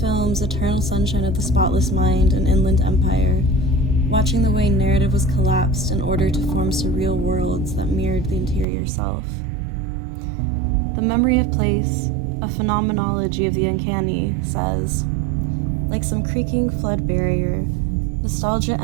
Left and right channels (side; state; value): left; drops out; at 8.7 s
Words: Eternal Sunshine of the Spotless Mind and Inland Empire, watching the way narrative was collapsed in order to form surreal worlds that mirrored the interior self. The memory of place, a phenomenology of the uncanny, says, like some creaking flood barrier, nostalgia